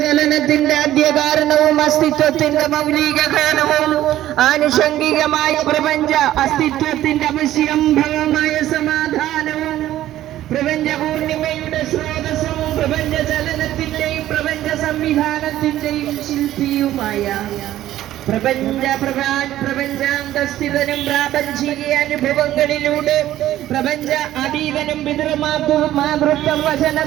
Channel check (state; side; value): quieter; left; 13.6 dB